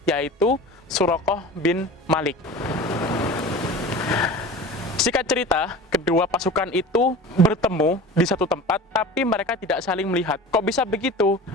yaitu Suraqah bin Malik. Singkat cerita, kedua pasukan itu bertemu di satu tempat, tapi mereka tidak saling melihat. Kok bisa begitu?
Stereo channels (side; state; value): both; normal; correlation 0.36